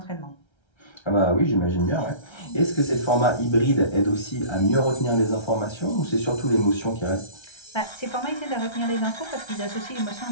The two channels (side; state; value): right; late; 1.3 ms